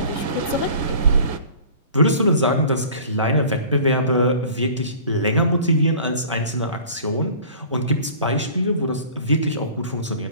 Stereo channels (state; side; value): inverted; both; correlation -0.45